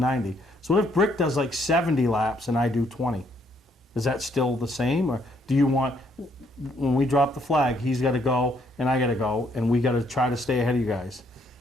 So what if Brick does like 70 laps and I do 20? Is that still the same? Or do you want, when we drop the flag, he's got to go and I got to go, and we got to try to stay ahead of you guys?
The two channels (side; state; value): both; normal; correlation 0.70